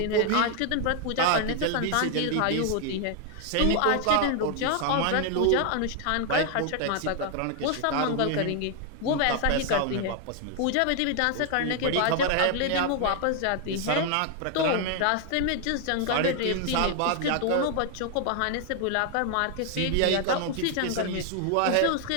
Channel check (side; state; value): both; different; correlation 0.00